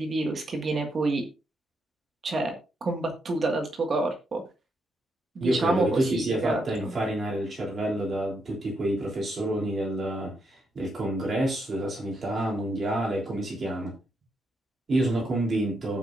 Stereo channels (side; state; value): both; normal; correlation 0.80